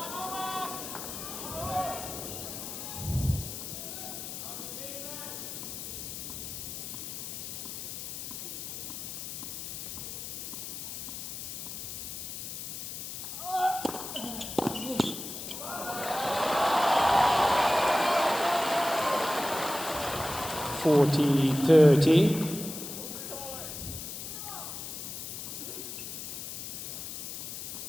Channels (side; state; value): left; noise; hiss, 7 dB below the sound